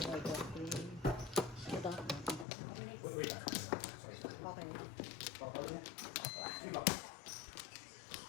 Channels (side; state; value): right; drops out; at 2.5 s